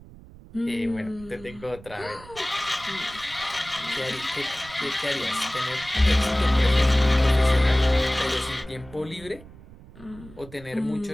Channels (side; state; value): right; noise; rumble, 19 dB below the sound